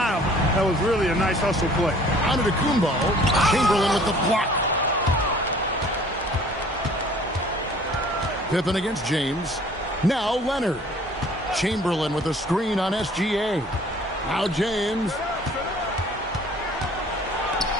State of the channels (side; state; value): both; normal; correlation 0.53